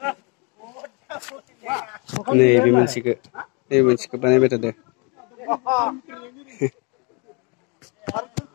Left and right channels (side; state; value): right; quieter; 32.8 dB